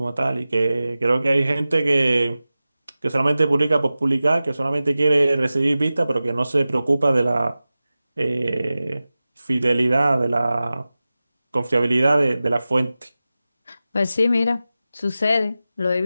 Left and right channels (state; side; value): inverted; both; correlation -0.96